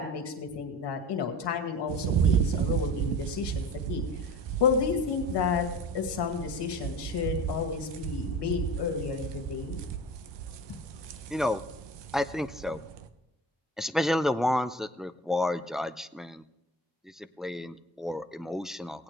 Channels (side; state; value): both; normal; correlation 0.35